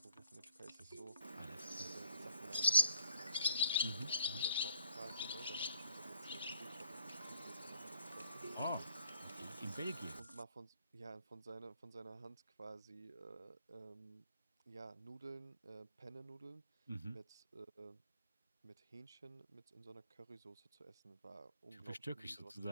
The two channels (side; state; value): both; inverted; correlation -0.64